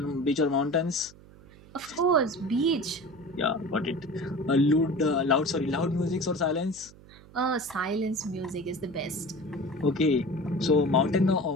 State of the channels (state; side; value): noise; right; hum, 22 dB below the sound